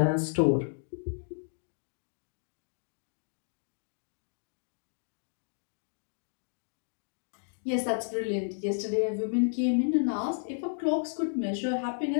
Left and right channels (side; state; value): right; silent; digital silence